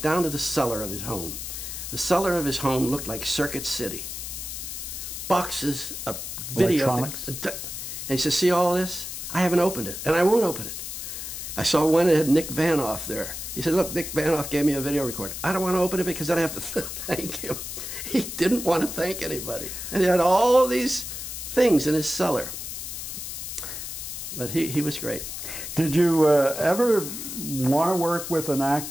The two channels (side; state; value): left; noise; hiss, 7 dB below the sound